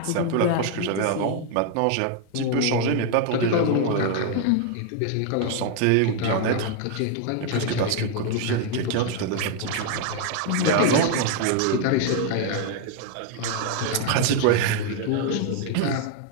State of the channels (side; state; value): both; different; correlation 0.00